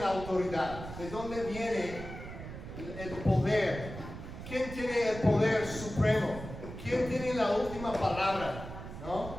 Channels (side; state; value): right; noise; rumble, 10 dB below the sound